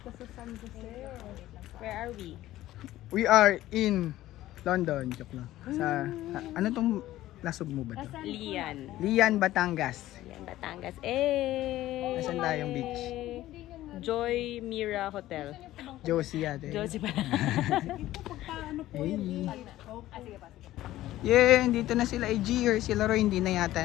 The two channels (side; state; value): right; quieter; 15.0 dB